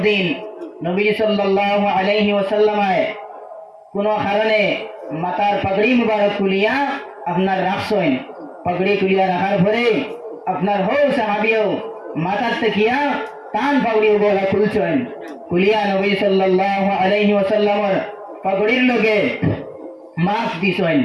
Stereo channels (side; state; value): both; identical; correlation 1.00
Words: নবীজি সাল্লাল্লাহু আলাইহি ওয়াসাল্লামে কোনো কারণে মাথার পাগড়ি মুবারক খুলিয়া আপনার রাখছেন। পাগড়ি খুলিয়া রাখার পরে আপনার হো সাহাবীও মাথার তেকিয়া টান পাগড়ি গলা খুলছেন। খুলিয়া নবীজি সাল্লাল্লাহু আলাইহি ওয়াসাল্লামের পাগড়ির লগে মাছ দিছেন।